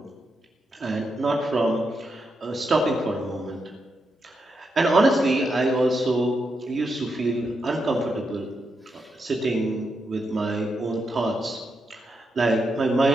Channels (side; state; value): both; normal; correlation 0.84